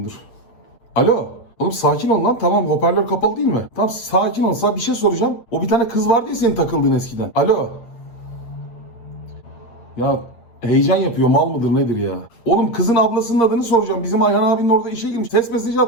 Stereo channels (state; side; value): late; right; 8.6 ms